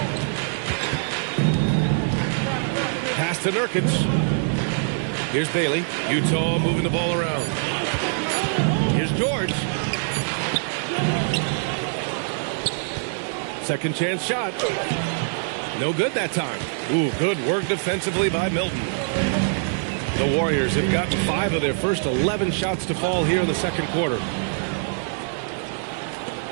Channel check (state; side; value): silent; left; digital silence